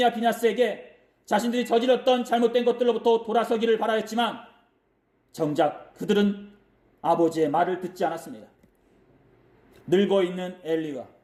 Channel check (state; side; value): identical; both; correlation 1.00